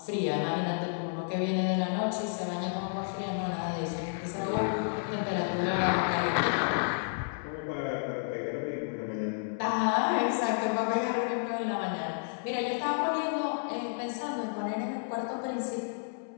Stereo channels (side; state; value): right; silent; 57 dB below the other